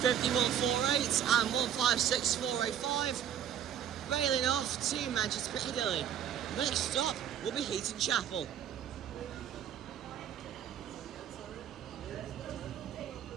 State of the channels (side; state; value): left; quieter; 9.6 dB